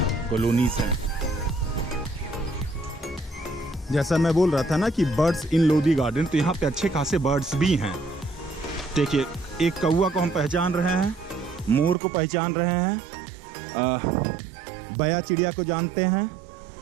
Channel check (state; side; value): drops out; left; at 12.0 s